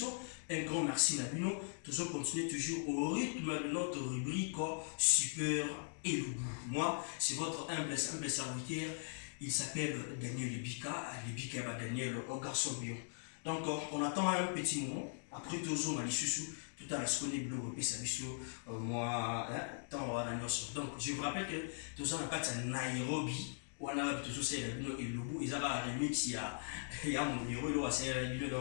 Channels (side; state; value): right; silent; digital silence